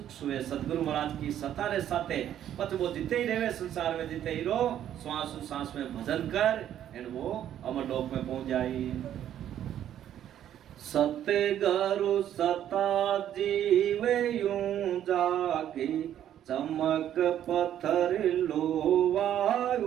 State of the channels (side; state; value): left; quieter; 10.8 dB